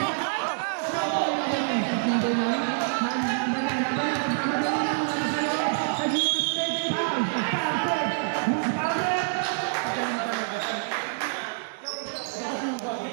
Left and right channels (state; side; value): silent; left; digital silence